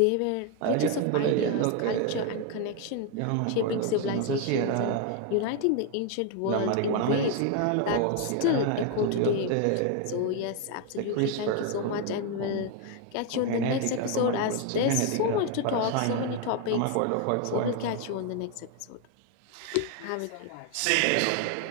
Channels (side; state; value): both; different; correlation 0.01